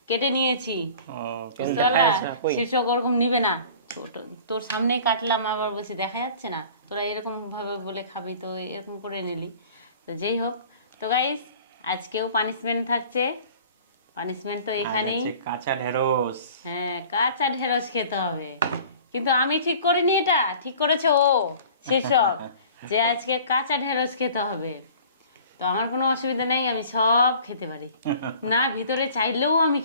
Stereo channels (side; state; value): both; inverted; correlation -0.46